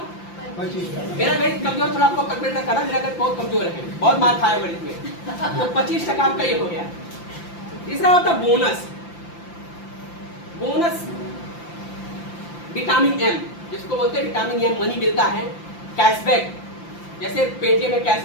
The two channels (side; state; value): right; late; 5.8 ms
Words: मेरा गणित कमजोर, थोड़ा आपको कैलकुलेटर करना, मेरा गणित बहुत कमजोर है, बहुत मार खाया गणित में, तो 25% आपका ये हो गया। तीसरा होता है बोनस। बोनस विटामिन एम, जिसको बोलते हैं विटामिन एम, मनी मिलता है, कैशबैक, जैसे पेटीएम में